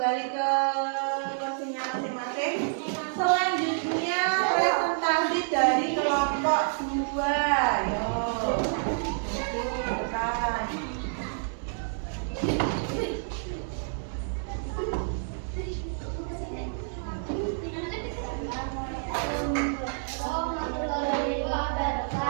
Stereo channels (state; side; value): silent; left; digital silence